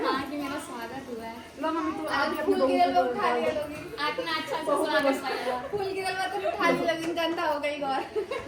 हाँ कि मेरा स्वागत हुआ है। लो मम्मी तू आप फूल गिरल में उठा लिया लोगी। इतना अच्छा से स्वागत किया। फूल गिरल में तो उठा लिया लोगी। गंदा हो गई और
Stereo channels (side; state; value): both; identical; correlation 1.00